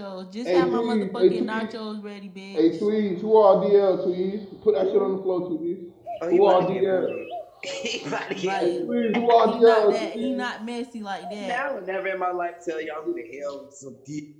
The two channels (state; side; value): identical; both; correlation 1.00